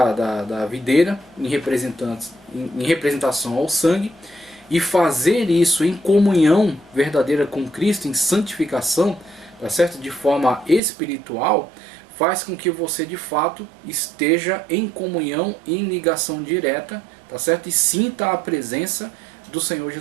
videira em representação ao sangue, e fazer isso em comunhão verdadeira com Cristo, em santificação, tá certo? De forma espiritual, faz com que você de fato esteja em comunhão, em ligação direta, tá certo? E sinta a presença do Senhor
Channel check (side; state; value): left; drops out; at 10.8 s